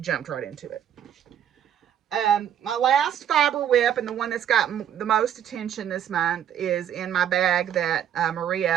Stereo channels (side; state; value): left; quieter; 9.9 dB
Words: jumped right into it. My last fiber whip, and the one that's got the most attention this month, is in my bag that